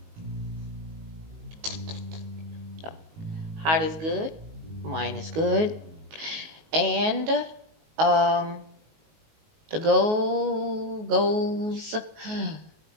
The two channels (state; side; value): late; left; 19 ms